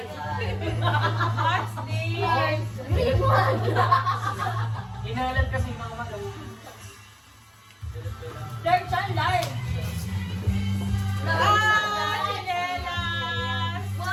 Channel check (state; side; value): identical; both; correlation 1.00